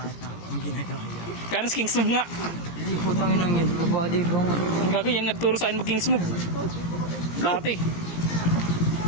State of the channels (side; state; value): right; late; 17 ms